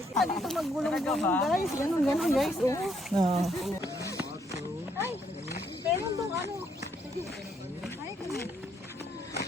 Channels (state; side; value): normal; both; correlation 0.71